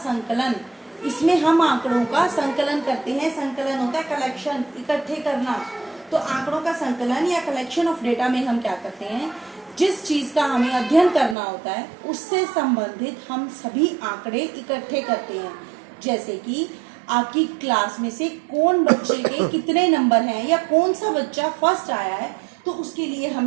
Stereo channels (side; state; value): left; drops out; at 11.4 s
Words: इसमें हम आंकड़ों का संकलन करते हैं। संकलन होता है कलेक्शन, इकट्ठे करना। तो आंकड़ों का संकलन या कलेक्शन ऑफ डेटा में हम क्या करते हैं, जिस चीज का हमें अध्ययन करना होता है उससे संबंधित हम सभी आंकड़े इकट्ठे करते हैं। जैसे कि आपकी क्लास में से कौन बच्चे के कितने नंबर हैं या कौन सा बच्चा फर्स्ट आया है, तो उसके लिए